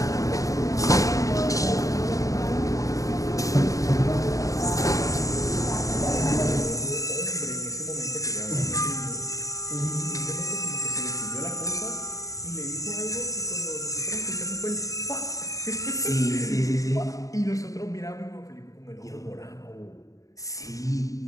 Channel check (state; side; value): late; right; 0.16 ms